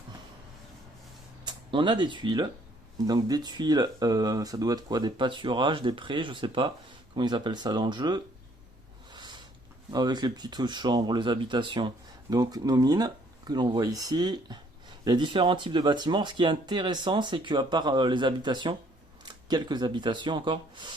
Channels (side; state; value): both; normal; correlation 0.63